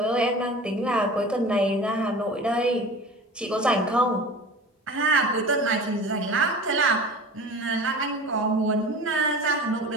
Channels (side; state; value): both; normal; correlation 0.37